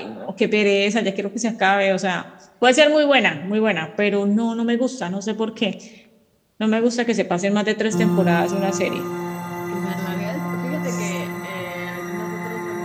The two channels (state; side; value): identical; both; correlation 1.00